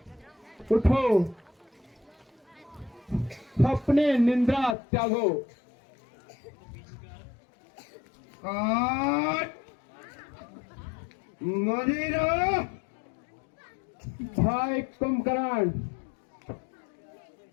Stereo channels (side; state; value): right; drops out; at 4.8 s